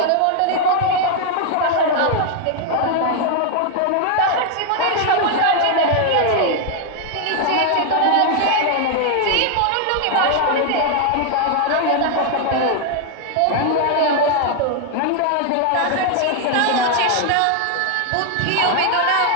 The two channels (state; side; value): different; both; correlation 0.00